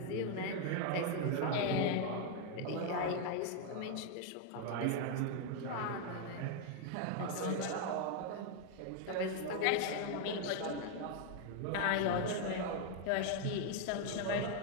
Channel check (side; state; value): both; different; correlation 0.01